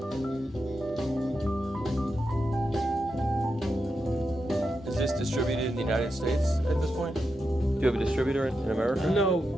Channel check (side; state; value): both; normal; correlation 0.87